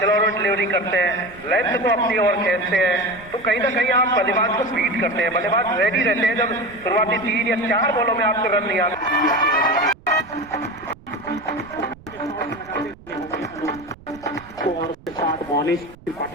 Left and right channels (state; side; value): noise; right; rumble, 22 dB below the sound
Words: डिलीवरी करते हैं, लेंथ को अपनी ओर खींचते हैं, तो कहीं ना कहीं आप बल्लेबाज को बीट करते हैं। बल्लेबाज रेडी रहते हैं जब शुरुआती 3 या 4 बॉलों में आपको रन नहीं आते।